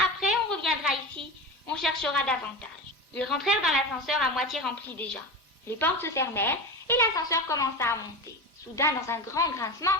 on reviendra ici. On cherchera davantage. » Ils rentrèrent dans l'ascenseur à moitié rempli déjà. Les portes se fermèrent et l'ascenseur commença à monter. Soudain, dans un grand grincement,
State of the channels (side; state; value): both; normal; correlation 0.25